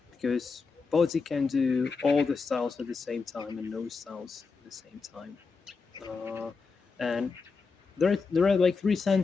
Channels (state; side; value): quieter; right; 4.7 dB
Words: because body can do all the styles at the same time and no styles at the same time. Uh, and there are like three